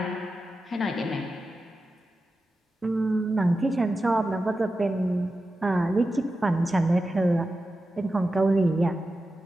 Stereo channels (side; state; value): both; normal; correlation 0.92